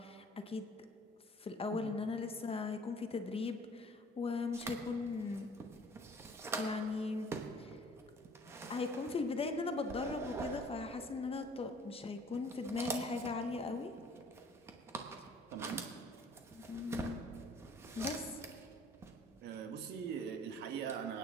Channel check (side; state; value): both; normal; correlation 0.53